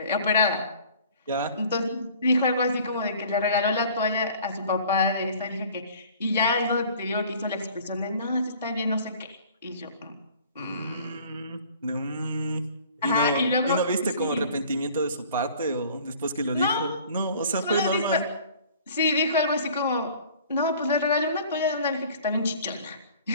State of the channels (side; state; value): both; inverted; correlation -0.49